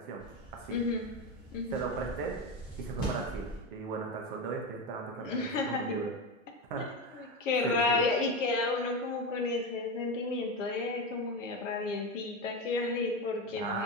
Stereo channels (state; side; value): normal; both; correlation 0.17